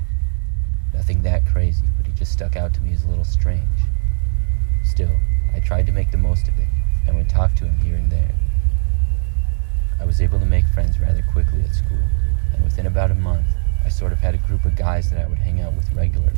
Nothing that crazy, but he just stuck out to me as a little strange. Still, I tried to make the most of it and would talk to him here and there. I was able to make friends rather quickly at school, and within about a month, I sort of had a group of guys that I would hang out with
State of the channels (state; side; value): silent; left; digital silence